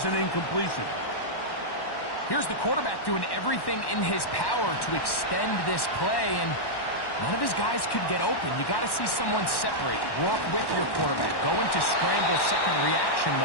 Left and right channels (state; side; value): late; right; 1.1 ms